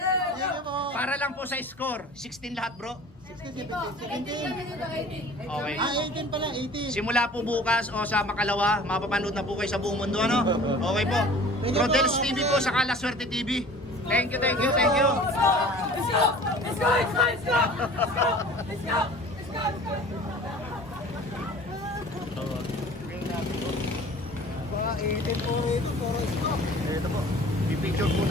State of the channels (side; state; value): both; normal; correlation 0.45